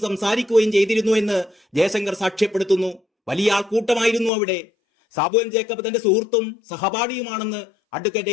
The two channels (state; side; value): drops out; right; at 4.3 s